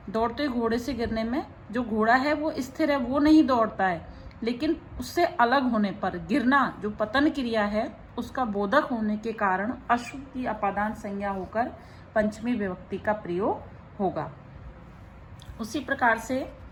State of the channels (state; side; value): identical; both; correlation 1.00